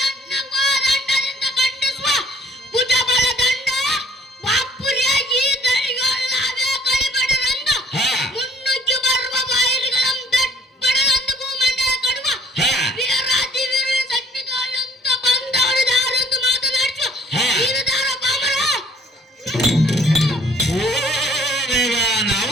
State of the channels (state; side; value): normal; both; correlation 0.59